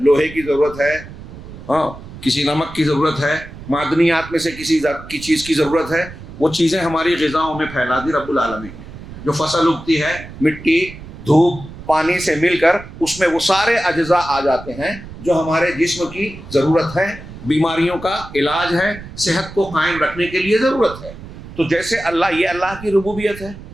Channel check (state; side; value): noise; right; rumble, 14 dB below the sound